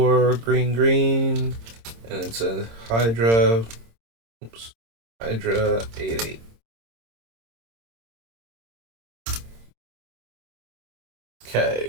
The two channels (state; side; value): late; left; 26 ms